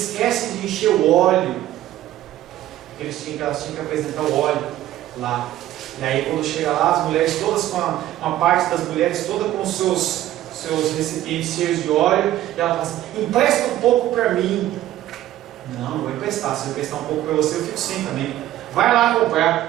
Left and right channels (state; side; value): quieter; left; 13.8 dB